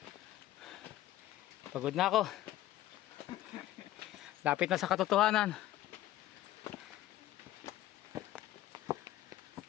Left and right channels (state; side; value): quieter; right; 14.6 dB